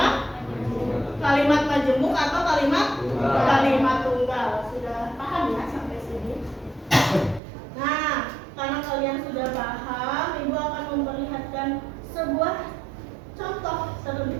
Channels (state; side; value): drops out; left; at 7.4 s